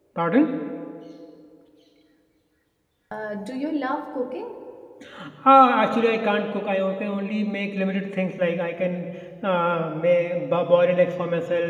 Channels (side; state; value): both; identical; correlation 1.00